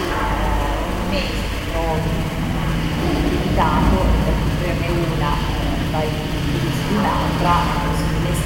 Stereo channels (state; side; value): identical; both; correlation 1.00